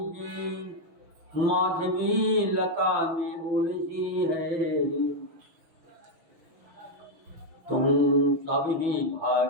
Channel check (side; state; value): left; late; 6.1 ms